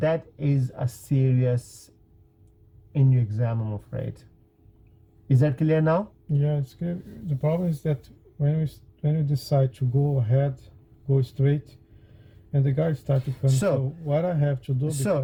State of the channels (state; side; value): identical; both; correlation 1.00